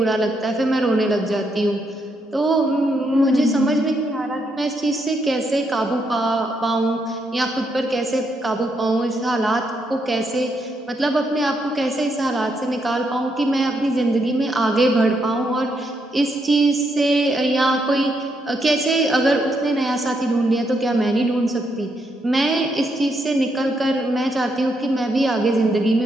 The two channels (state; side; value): normal; both; correlation 0.78